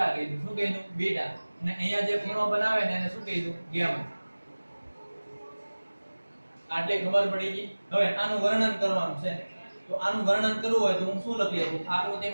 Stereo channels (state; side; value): inverted; both; correlation -1.00